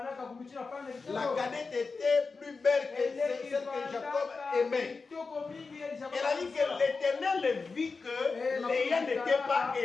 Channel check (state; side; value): quieter; right; 4.4 dB